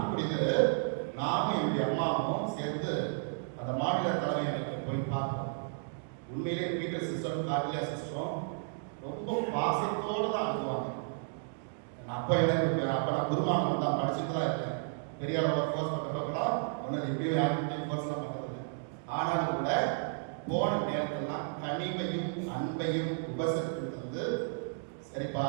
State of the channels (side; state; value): left; silent; digital silence